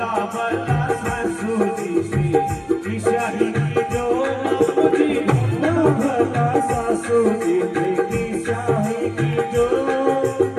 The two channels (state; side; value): identical; both; correlation 1.00